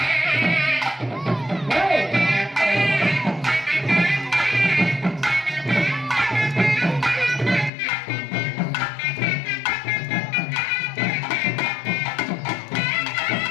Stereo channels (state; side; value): drops out; right; at 7.7 s